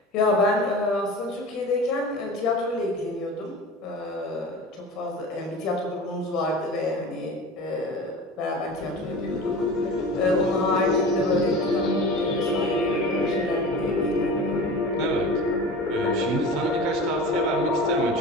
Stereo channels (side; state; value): both; normal; correlation 0.35